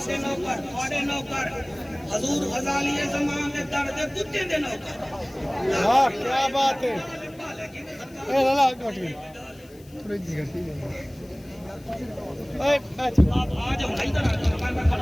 دے نوکر تھوڑے نوکر حضور غزالی زمان دے درد کتے دے نوکر ہاں کیا بات ہے اے لالا کٹ گئی تھوڑی جی گھٹی اے آپ آ جاؤ ادھر آ جاؤ میں کھڑا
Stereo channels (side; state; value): left; noise; hiss, 27 dB below the sound